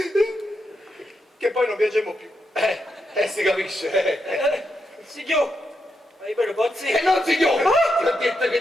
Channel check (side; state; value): both; normal; correlation 0.83